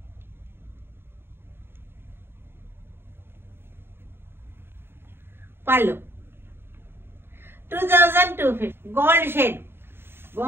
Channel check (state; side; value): late; left; 0.11 ms